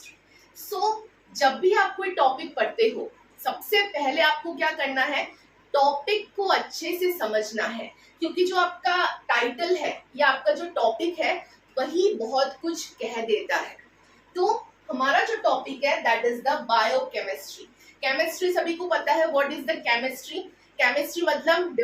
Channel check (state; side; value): identical; both; correlation 1.00